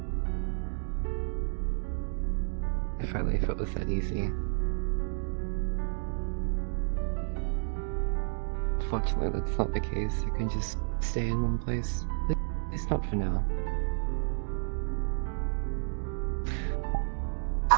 If only if it was that easy. Fortunately, that's not the case. I can just stay in one place. At least not for now.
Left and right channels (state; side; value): silent; left; digital silence